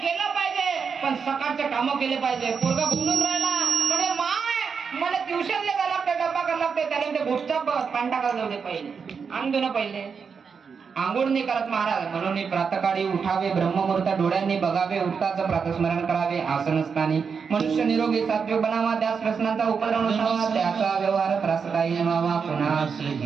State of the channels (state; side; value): quieter; left; 5.9 dB